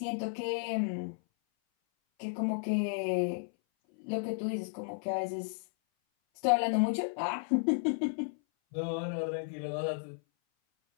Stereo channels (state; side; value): silent; right; 56 dB below the other